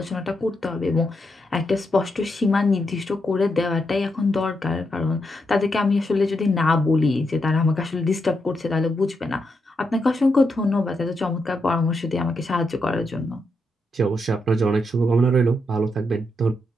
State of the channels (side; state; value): both; normal; correlation 0.82